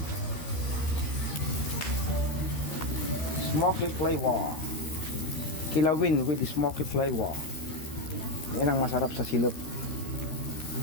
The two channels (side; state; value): right; late; 13 ms